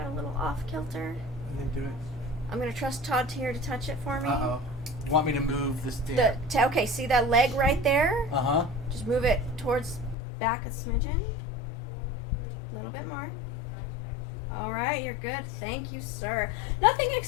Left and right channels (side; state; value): right; drops out; at 10.2 s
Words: a little off kilter. And then do it. I'm gonna trust Todd here to touch it for me. Uh-oh. Want me to move this thing? Okay, see that leg right there? Uh-huh. Just move it towards back a smidgen. A little bit more. All right, you're good. Thank you, sir. Nothing